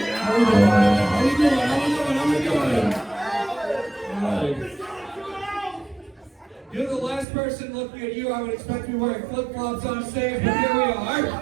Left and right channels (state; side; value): drops out; left; at 7.2 s